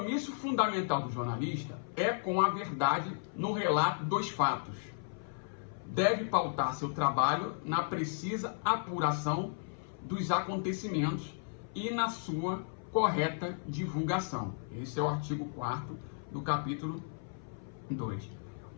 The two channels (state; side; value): silent; right; 55 dB below the other